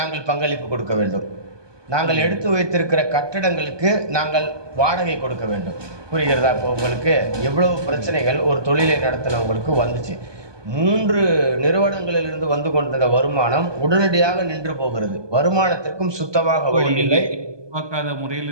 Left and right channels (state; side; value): late; left; 1.2 ms